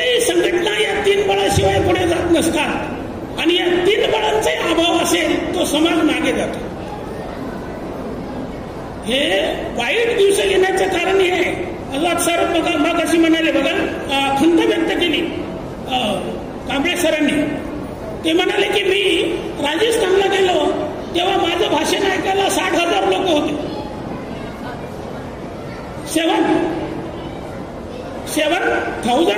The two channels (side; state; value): both; identical; correlation 1.00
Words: संघटना या 3 बळाशिवाय पुढे जात नसतात आणि या 3 बळांचाही अभाव असेल तो समाज मागे जातो. हे वाईट दिवस येण्याचं कारण हे आहे. आझाद सर मग अशी म्हणाले बघा, खंत व्यक्त केली कांबळे सरांनी. ते म्हणाले की मी राजस्थानला गेलो तेव्हा माझं भाषण ऐकायला 60,000 लोक होते.